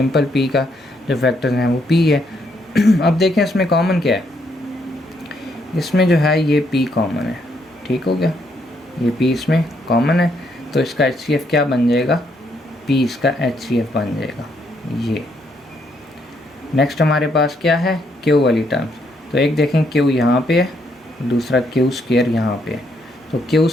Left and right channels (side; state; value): both; normal; correlation 0.74